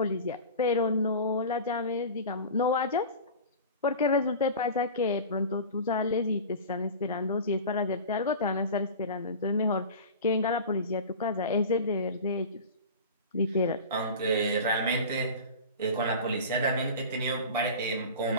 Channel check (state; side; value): inverted; both; correlation -0.33